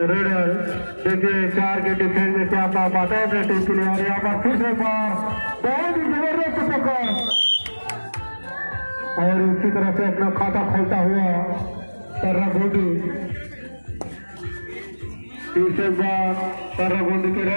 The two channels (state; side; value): inverted; both; correlation -1.00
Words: रेडर देखिए 4 के डिफेंस में क्या पाता है अपने टीम के लिए और यहाँ पर फिर से बार बहुत ही जबरदस्त पकड़ और इसी तरह से अपना खाता खोलता हुआ ताराबंदी तीसरे बार ताराबंदी के